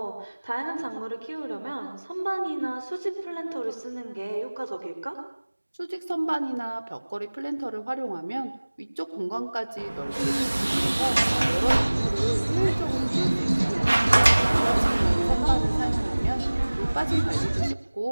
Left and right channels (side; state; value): both; inverted; correlation -1.00